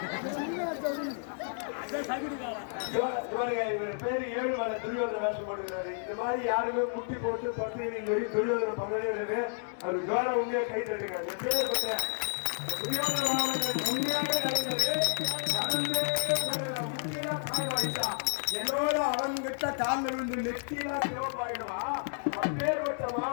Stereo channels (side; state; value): right; silent; digital silence